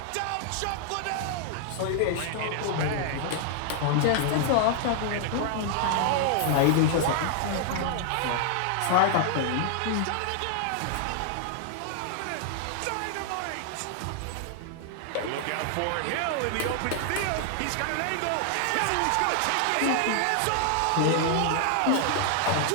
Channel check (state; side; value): different; both; correlation 0.00